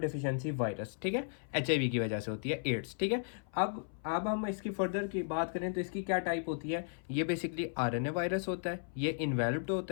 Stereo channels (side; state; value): right; silent; 54 dB below the other